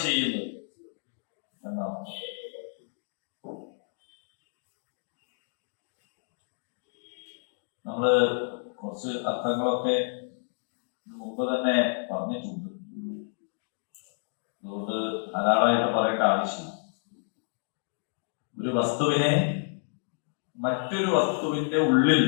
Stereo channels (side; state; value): right; silent; digital silence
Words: ചെയ്യുന്നത് എന്നാണ്. നമ്മള് കുറച്ച് അർത്ഥങ്ങളൊക്കെ മുമ്പ് തന്നെ പറഞ്ഞിട്ടുണ്ട്, അതുകൊണ്ട് ധാരാളമായിട്ട് പറയേണ്ട ആവശ്യമില്ല. ഒരു വസ്തുവിനെ മറ്റൊരു വസ്തുവിന്റെ ഉള്ളിൽ